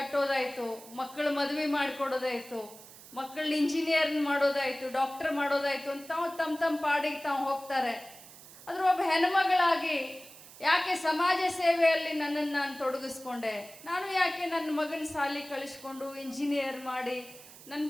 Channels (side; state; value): right; noise; hiss, 19 dB below the sound